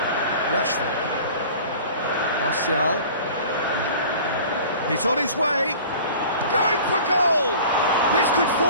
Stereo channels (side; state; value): both; inverted; correlation -0.43